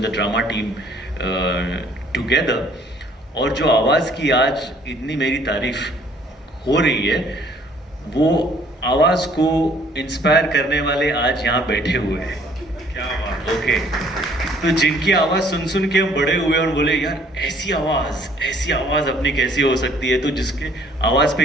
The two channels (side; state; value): both; normal; correlation 0.59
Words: the drama team together. और जो आवाज़ की आज इतनी मेरी तारीफ हो रही है, वो आवाज़ को इंस्पायर करने वाले आज यहाँ बैठे हुए हैं. क्या बात, ओके। तो जिनकी आवाज़ सुन सुन के हम बड़े हुए और बोले यार ऐसी आवाज़ अपनी कैसी हो सकती है, तो जिसके आवाज़